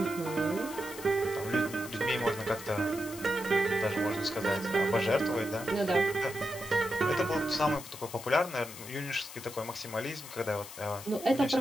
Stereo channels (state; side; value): noise; left; hiss, 13 dB below the sound